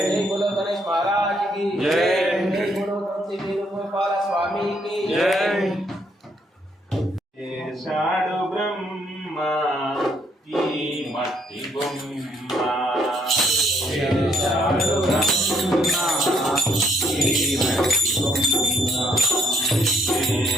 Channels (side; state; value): both; normal; correlation 0.70